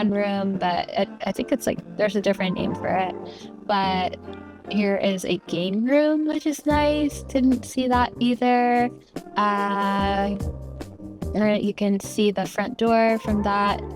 but I think it's like there's a different name for it. But here is a game room, which is nice. Didn't see that either. You can see the front door from that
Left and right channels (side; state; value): both; identical; correlation 1.00